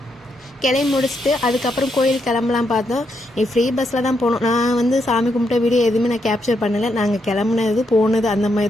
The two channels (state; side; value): normal; both; correlation 0.79